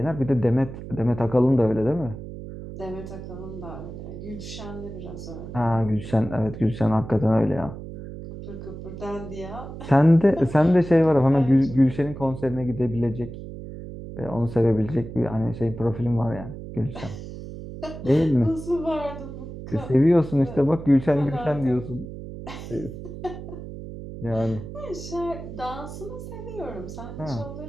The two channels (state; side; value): noise; right; hum, 11 dB below the sound